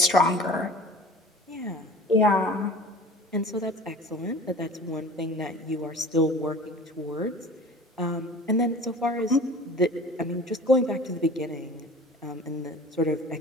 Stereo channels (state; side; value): normal; both; correlation 0.42